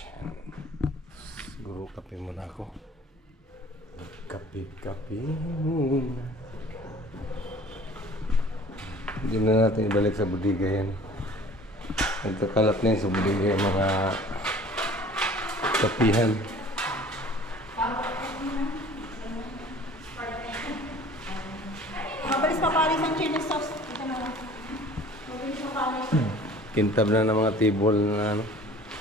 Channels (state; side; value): normal; both; correlation 0.47